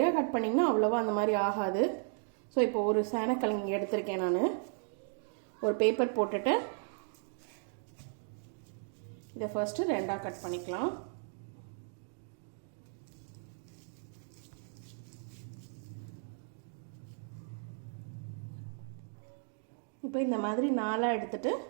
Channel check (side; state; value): left; silent; 54 dB below the other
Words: கட் பண்ணிங்கன்னா அவ்வளோவா அந்த மாதிரி ஆகாது. ஸோ இப்போ ஒரு சேனக்கிழங்கு எடுத்திருக்கேன். நான் ஒரு பேப்பர் போட்டுட்டு இதை ஃபர்ஸ்ட்டு ரெண்டாக கட் பண்ணிக்கலாம். இப்போ இந்த மாதிரி நாலாக எடுத்துட்டு